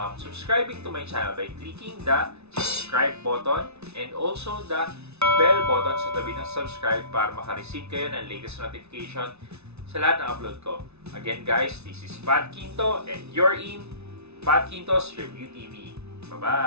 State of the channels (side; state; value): left; late; 0.80 ms